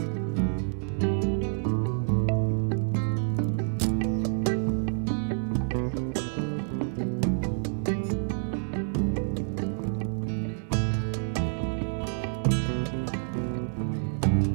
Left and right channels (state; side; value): silent; left; digital silence